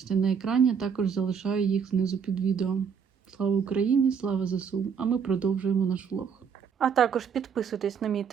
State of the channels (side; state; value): left; quieter; 6.8 dB